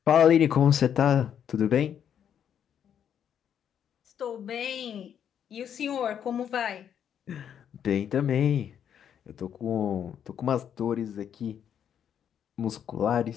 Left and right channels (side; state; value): right; quieter; 8.8 dB